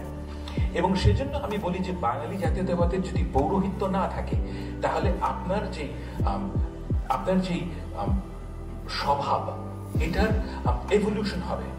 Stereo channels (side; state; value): both; identical; correlation 1.00